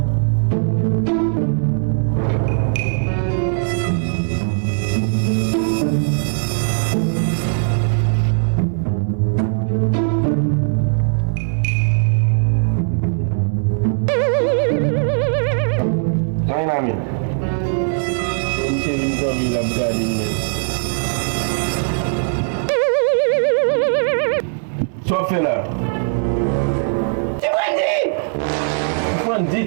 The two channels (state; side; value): silent; left; 67 dB below the other